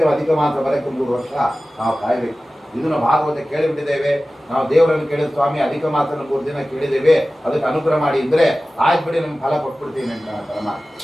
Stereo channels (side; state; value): both; normal; correlation 0.96